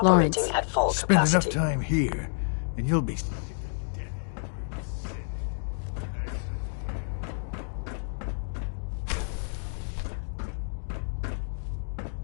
Lawrence. Operating at full Spend capacity. enough time here, and you'll be sick to death of the word synth. I certainly am.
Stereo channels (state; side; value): silent; right; digital silence